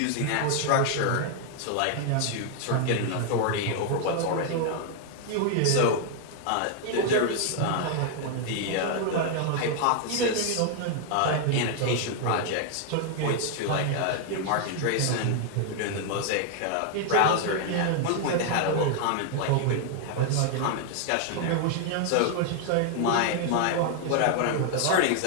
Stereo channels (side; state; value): both; different; correlation 0.00